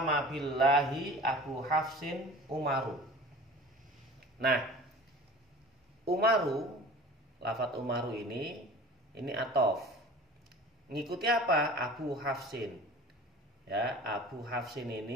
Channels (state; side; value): normal; both; correlation 0.41